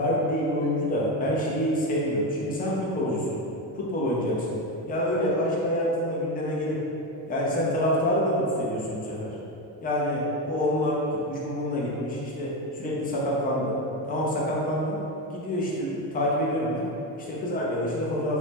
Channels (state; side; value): normal; both; correlation 0.14